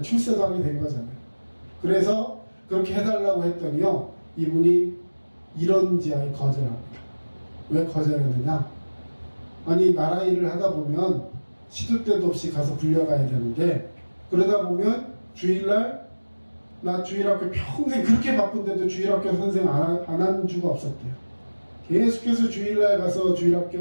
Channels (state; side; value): inverted; both; correlation -1.00